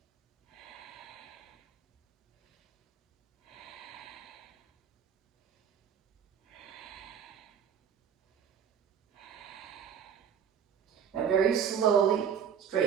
now very slowly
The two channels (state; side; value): quieter; left; 7.9 dB